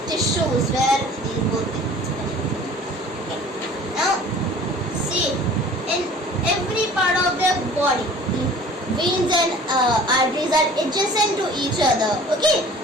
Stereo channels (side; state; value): both; normal; correlation 0.47